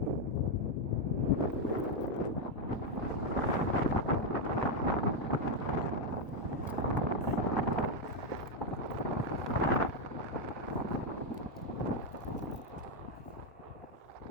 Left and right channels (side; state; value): both; normal; correlation 0.03